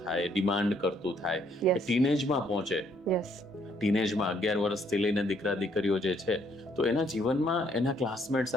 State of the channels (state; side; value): normal; both; correlation 0.68